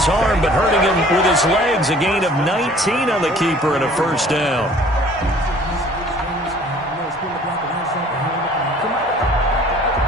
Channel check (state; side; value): normal; both; correlation 0.52